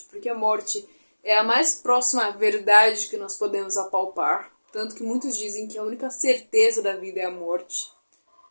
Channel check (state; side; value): inverted; both; correlation -1.00